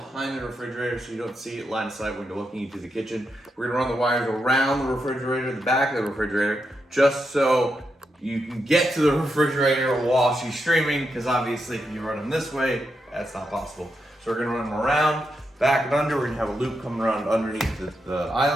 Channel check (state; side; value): normal; both; correlation 0.84